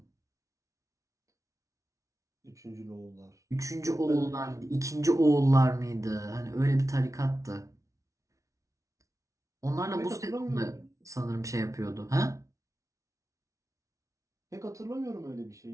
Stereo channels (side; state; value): left; late; 0.15 ms